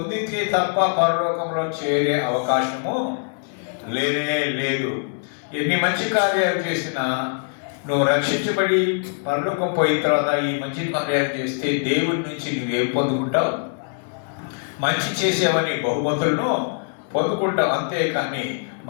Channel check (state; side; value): silent; right; 64 dB below the other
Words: తప్ప పరలోకంలో చేరే అవకాశము లేనే లేదు. ఎన్ని మంచి కార్యాలు చేసినా నువ్వు రక్షించబడి పరలోకం పోయిన తర్వాత ఈ మంచి కార్యాలు చేస్తే దేవుడి నుంచి నువ్వేం పొందుకుంటావు? మంచి చేసేవని బహుమతులను పొందుకుంటావు. అంతేకాని